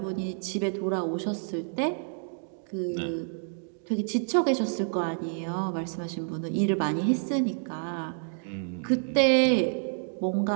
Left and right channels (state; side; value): silent; left; digital silence